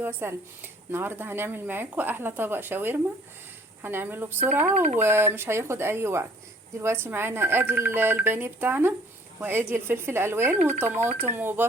وسلم. النهارده هنعمل معاكم احلى طبق شاورما. هنعمله بسرعة ومش هياخد اي وقت. دلوقتي معانا ادي البانيه بتاعنا، وادي الفلفل الالوان وطماطم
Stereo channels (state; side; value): normal; both; correlation 0.56